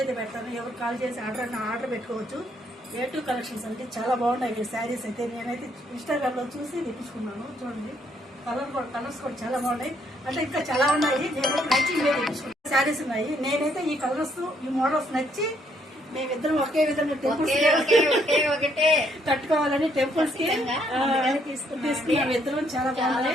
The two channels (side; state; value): both; normal; correlation 0.70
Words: అయితే పెడతాను. ఎవరు కాల్ చేసి ఆర్డర్ పెట్టుకోవచ్చు. A2 కలెక్షన్స్ అంటే చాలా బాగున్నాయి శారీస్ అయితే. నేనైతే ఇన్స్టాగ్రామ్లో చూసి తెప్పించుకున్నాను. చూడండి, కలర్స్ కూడా చాలా బాగున్నాయి. అంటే ఇంకా చాలా ఉన్నాయి. నేనైతే నచ్చి తెప్పించుకున్నాను. శారీస్ ఉన్నాయి. నేనైతే ఈ కలర్స్, ఈ మోడల్స్ నచ్చి మేమిద్దరం ఒకే విధంగా టెంపుల్స్ కట్టుకోవాలని టెంపుల్స్ కి తీసుకున్నాం. ఇద్దరం చాలా